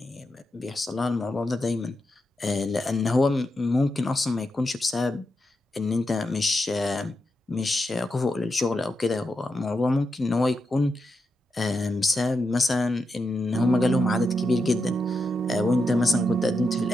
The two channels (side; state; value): both; normal; correlation 0.86